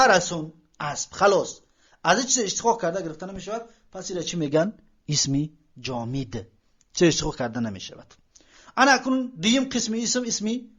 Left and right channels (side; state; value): both; identical; correlation 1.00